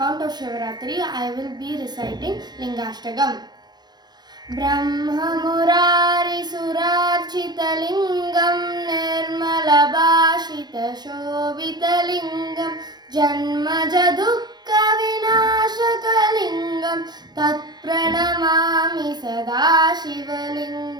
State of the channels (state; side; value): late; left; 0.20 ms